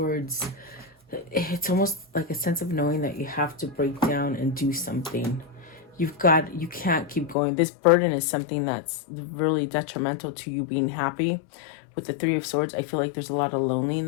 it's almost like a sense of knowing that you have to break down and do something. You can't keep going. This burden is something that's really detrimental to you being happy. With the Three of Swords, I feel like there's a lot of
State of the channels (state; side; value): drops out; right; at 7.4 s